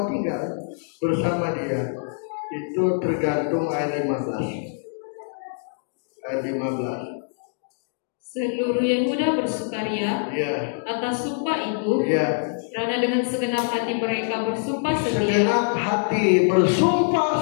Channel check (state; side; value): silent; right; digital silence